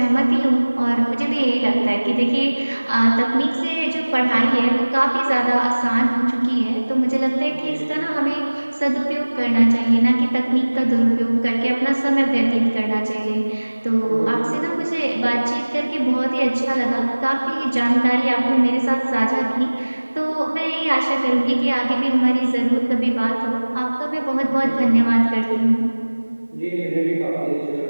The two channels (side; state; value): both; inverted; correlation -1.00